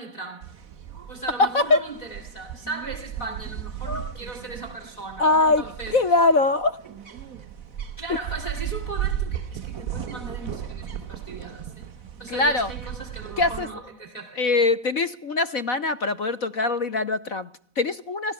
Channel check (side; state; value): right; late; 4.1 ms